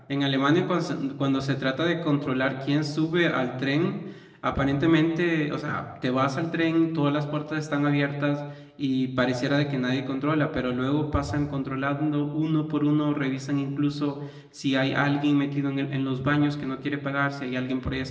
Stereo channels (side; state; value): both; identical; correlation 1.00